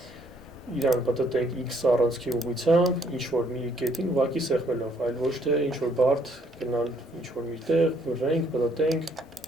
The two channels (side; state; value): both; normal; correlation 0.66